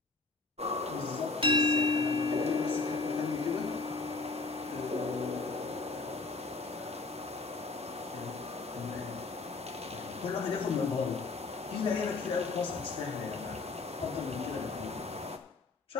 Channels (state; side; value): quieter; right; 3.8 dB